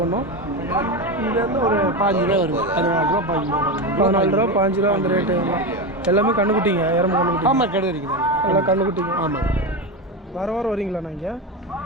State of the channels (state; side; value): normal; both; correlation 0.17